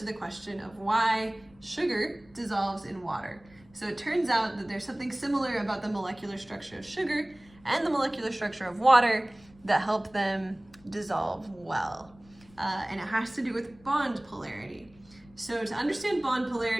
the question of why sugar dissolves in water. So it turns out that there's something similar about the molecular structure of sugar and the molecular structure of water that help them dissolve well. And it has to do with bond polarity. So to understand bond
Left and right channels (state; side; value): noise; left; rumble, 27 dB below the sound